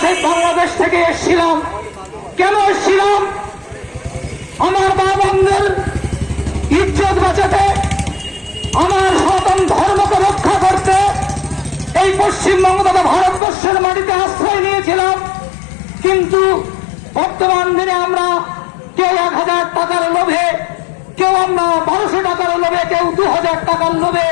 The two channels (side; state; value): right; drops out; at 13.4 s